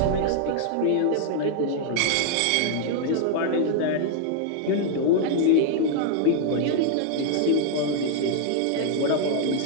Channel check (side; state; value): both; different; correlation 0.00